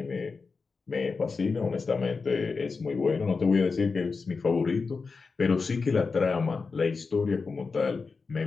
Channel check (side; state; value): right; quieter; 4.6 dB